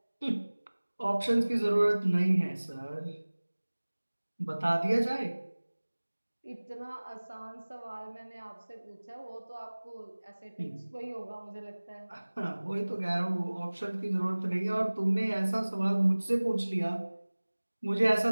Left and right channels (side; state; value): both; inverted; correlation -1.00